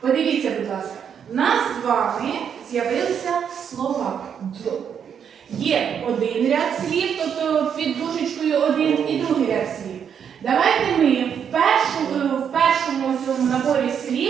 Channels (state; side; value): quieter; left; 7.9 dB